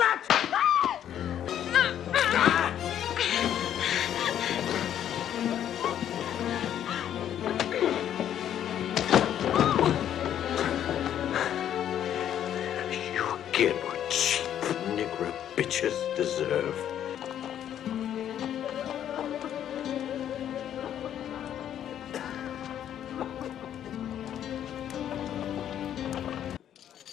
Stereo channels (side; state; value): right; quieter; 10.3 dB